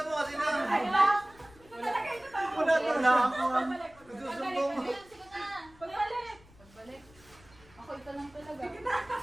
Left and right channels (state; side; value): noise; left; rumble, 25 dB below the sound